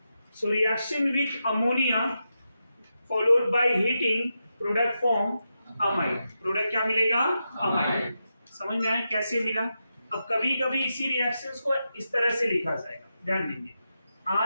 So reaction with ammonia followed by heating product form amide. Product क्या मिलेगा amide. समझ में आया कैसे मिला। अब कभी कभी इसी रिएक्शंस को इस तरह से लिखा जाएगा, ध्यान देंगे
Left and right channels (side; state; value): both; inverted; correlation -0.88